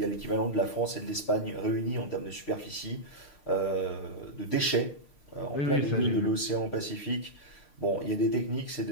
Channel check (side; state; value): right; late; 6.5 ms